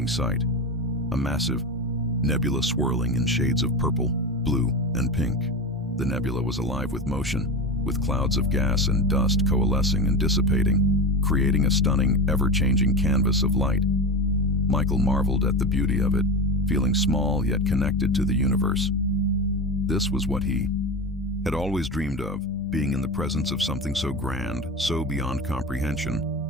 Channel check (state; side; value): normal; both; correlation 0.23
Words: sight. A massive, nebula swirling in shades of purple, blue, and pink. The nebula was alive with motion, with clouds of gas and dust coalescing and dissipating, creating a stunning, ever-changing canvas of light. Michael marveled at the beauty of it, feeling small yet connected to the universe. This was what he had always dreamed of, being in the presence of something so grand, so beyond